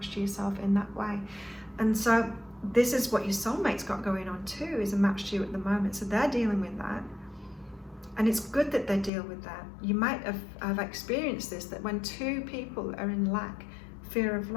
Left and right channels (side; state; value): right; drops out; at 9.1 s